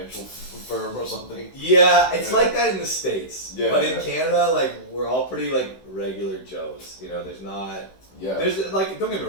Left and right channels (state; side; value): late; right; 16 ms